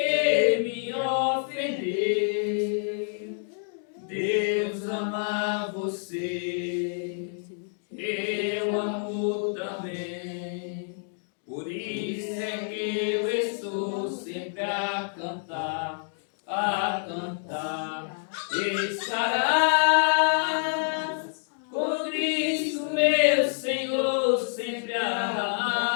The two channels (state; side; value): silent; right; digital silence